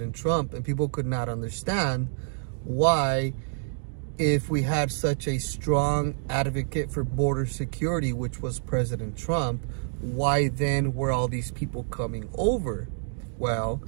Trump, and people could not understand why, if we had such a strong advocate for border security, which was President Trump, why then were all these people coming over? Well,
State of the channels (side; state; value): left; silent; digital silence